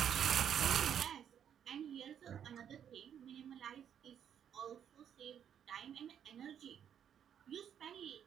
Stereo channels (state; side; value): quieter; left; 9.0 dB